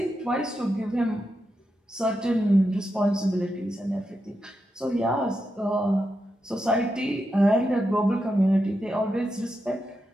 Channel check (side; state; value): both; normal; correlation 0.86